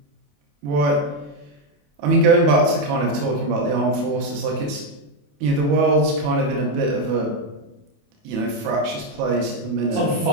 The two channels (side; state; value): left; late; 28 ms